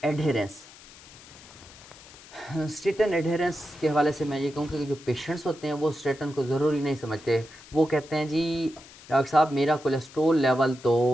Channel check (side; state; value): left; noise; hiss, 20 dB below the sound